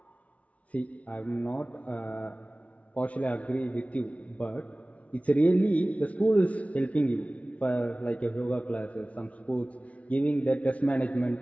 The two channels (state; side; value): late; right; 0.065 ms